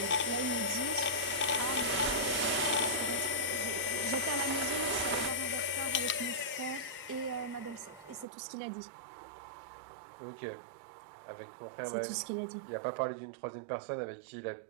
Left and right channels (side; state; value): left; drops out; at 8.2 s